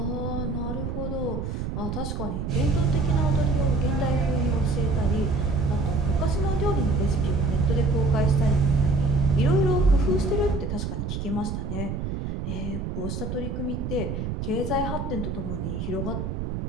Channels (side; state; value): right; noise; rumble, 4 dB below the sound